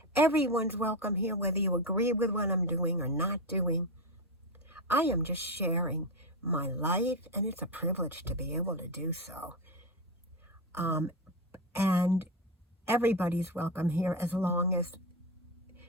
Everyone's welcome here, whether you agree with what I'm doing or not doing. I am just sharing my life, and it's a privilege to be able to do so. And everybody's welcome here as long as,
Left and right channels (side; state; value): both; normal; correlation 0.13